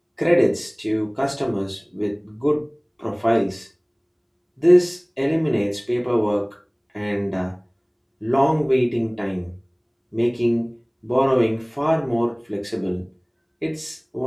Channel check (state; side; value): identical; both; correlation 1.00